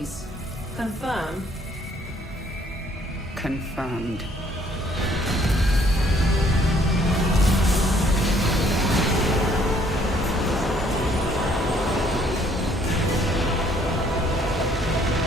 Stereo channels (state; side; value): normal; both; correlation 0.63